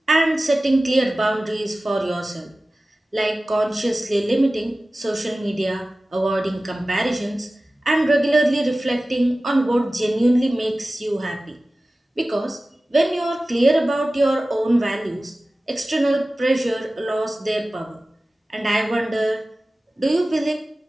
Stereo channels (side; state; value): both; normal; correlation 0.96